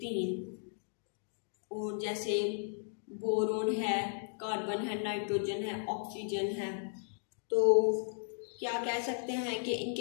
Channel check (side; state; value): right; silent; digital silence